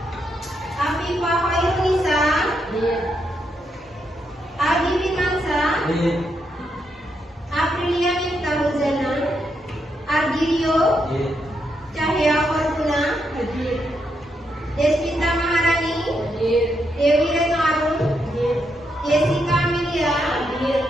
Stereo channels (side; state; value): both; normal; correlation 0.80